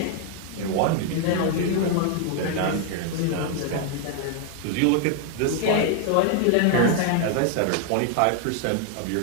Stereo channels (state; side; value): different; both; correlation 0.00